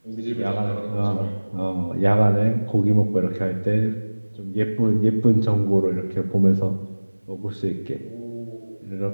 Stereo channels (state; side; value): inverted; both; correlation -1.00